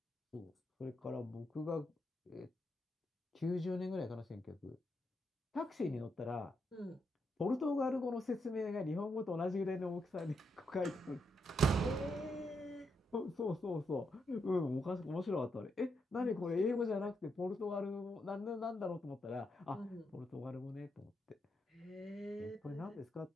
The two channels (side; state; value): both; normal; correlation 0.81